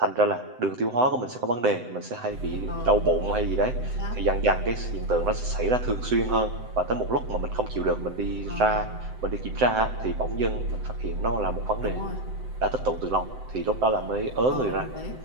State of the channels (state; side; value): late; left; 7.9 ms